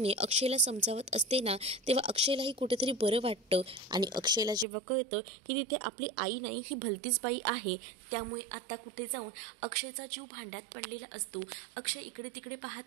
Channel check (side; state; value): left; drops out; at 4.7 s